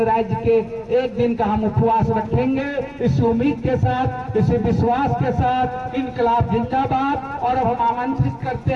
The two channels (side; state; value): both; identical; correlation 1.00